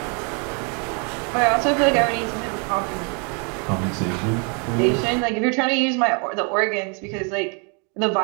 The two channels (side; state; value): left; quieter; 35.8 dB